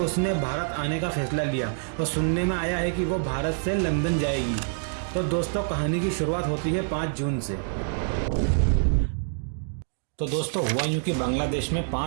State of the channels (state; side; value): silent; left; digital silence